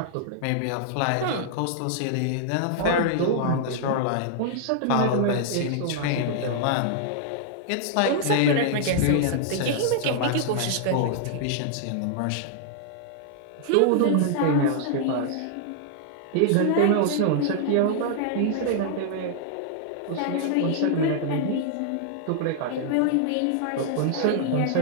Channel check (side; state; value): both; different; correlation -0.01